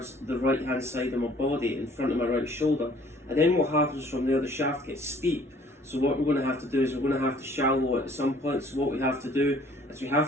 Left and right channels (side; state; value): both; normal; correlation 0.56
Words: the right hand side of my body, in front of my right shoulder. And then what happens from there, the shaft gets steep. So what we're going to have to do is we're going to have to shallow it at some point. So what we have to do is we